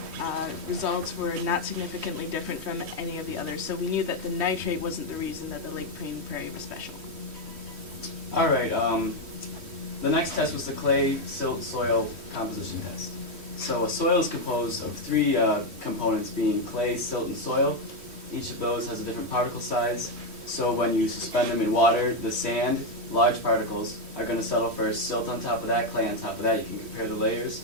results were not significantly different from any of the others, so we knew that the nitrate wasn't the reason that the Lake Prairie was special. All right. The next test was the clay silt soil composition test. So a soil is composed of 3 components, being clay, silt, and soil. Each of those has a different particle size. So when you suspend them in water, the sand, large particles, are going to settle first. Silt on top of that, clay on top of that. You can compare the layers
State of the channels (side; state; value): left; late; 3.1 ms